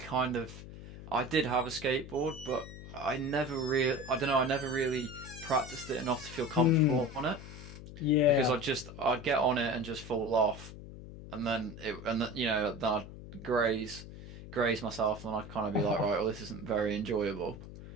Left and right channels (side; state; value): left; noise; hum, 13 dB below the sound